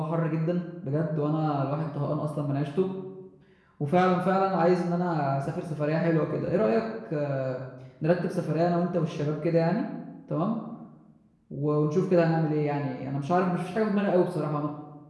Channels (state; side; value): identical; both; correlation 1.00